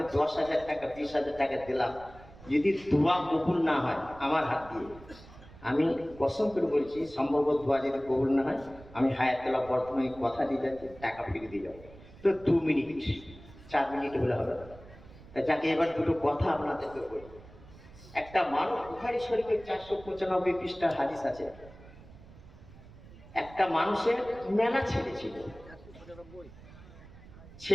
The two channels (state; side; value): noise; right; rumble, 20 dB below the sound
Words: 10,000 টাকা 20,000 টাকা দিলাম, যদি দোয়া কবুল না হয় আমার হাত দিয়ে, আমি কসম করে বলছি সম্ভবত দোয়া যদি কবুল না হয়, আমি হায়াতুল্লাহ বর্তমানে কথা দিয়ে যাচ্ছি, টাকা ফিরে দিয়ে যাবো। তো 2 মিনিট 4 মিনিট হলে হবে না। যাকে এবার দুটো কথা আপনাদেরকে বলি। একটা মানুষ, বুখারী শরীফের 495 পৃষ্ঠার হাদিস আছে, একটা মানুষের মেলা ছেলে ছিল,